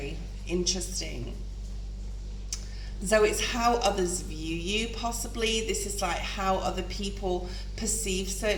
interesting. So it's how others view you, possibly. This is like how other people perceive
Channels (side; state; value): both; identical; correlation 1.00